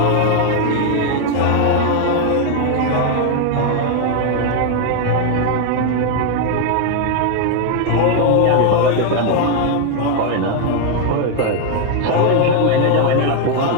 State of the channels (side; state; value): both; different; correlation 0.01